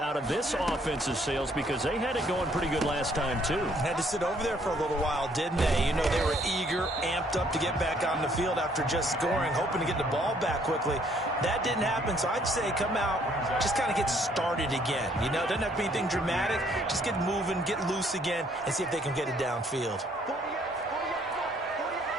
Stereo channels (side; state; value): both; normal; correlation 0.65